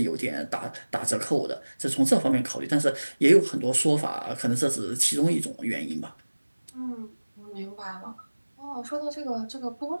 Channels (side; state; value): both; inverted; correlation -1.00